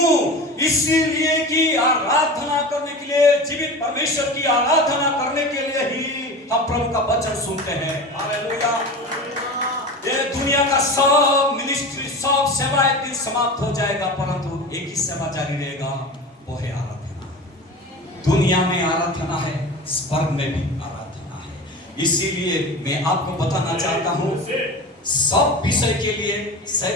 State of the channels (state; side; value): normal; both; correlation 0.32